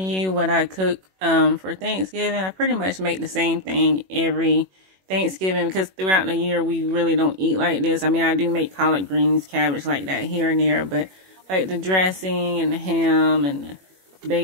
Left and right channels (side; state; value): left; late; 21 ms